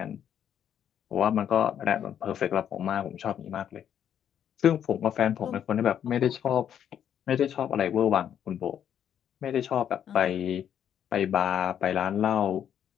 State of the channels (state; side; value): quieter; right; 9.4 dB